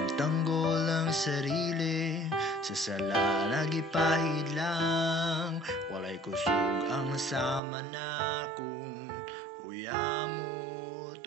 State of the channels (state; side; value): drops out; left; at 7.6 s